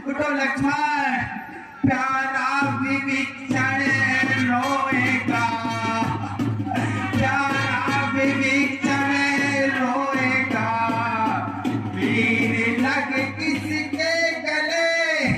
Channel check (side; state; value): both; identical; correlation 1.00